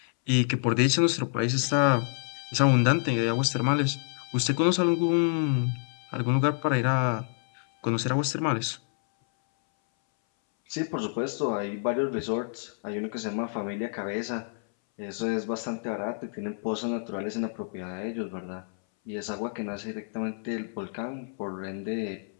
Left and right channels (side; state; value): right; silent; 59 dB below the other